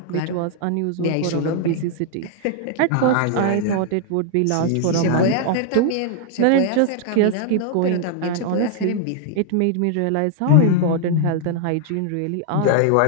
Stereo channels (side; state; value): both; different; correlation 0.00